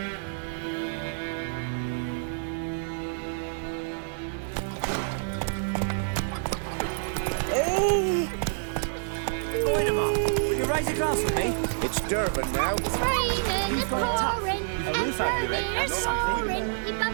Wait a moment. Will you raise a glass with me? It's Durban now. It's raining, it's pouring, A roof over your head, and that's something. roaring. He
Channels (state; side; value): silent; left; digital silence